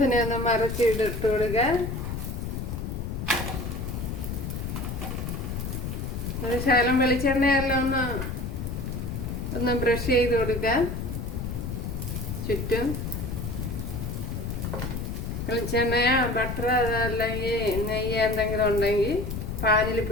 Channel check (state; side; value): noise; left; rumble, 4 dB below the sound